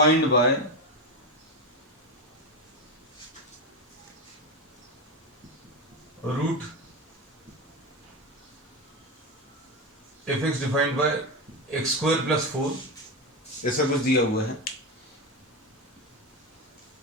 by root F X defined by X square plus 4, ऐसा कुछ दिया हुआ है।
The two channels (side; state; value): both; normal; correlation 0.16